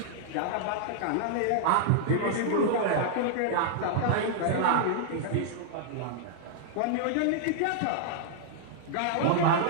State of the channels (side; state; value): both; different; correlation -0.01